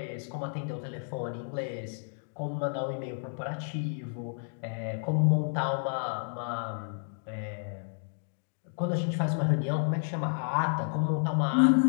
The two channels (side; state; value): right; silent; digital silence